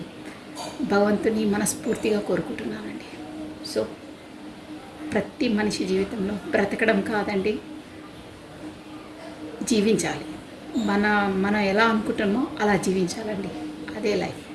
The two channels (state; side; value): identical; both; correlation 1.00